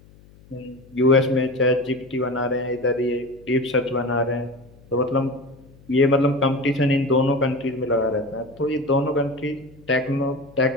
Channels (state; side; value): noise; left; hum, 25 dB below the sound